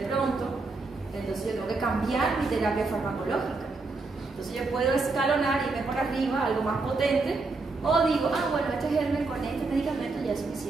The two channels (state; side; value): quieter; left; 3.7 dB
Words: pronto, entonces yo tengo que cambiar mi terapia farmacológica. Entonces yo puedo escalonar y irme por arriba, algo más potente, o digo, bueno, este germen con este medicamento ya es